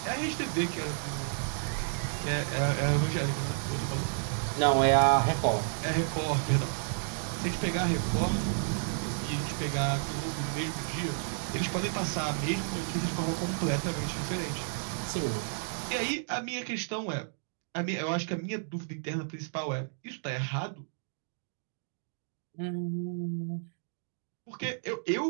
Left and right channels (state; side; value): silent; left; digital silence